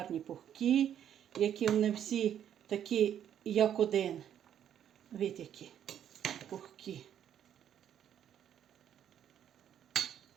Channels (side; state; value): left; quieter; 9.8 dB